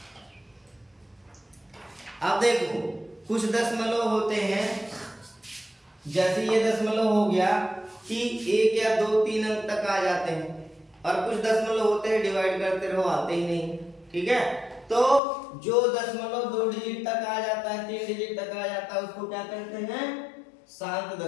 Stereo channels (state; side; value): drops out; right; at 15.2 s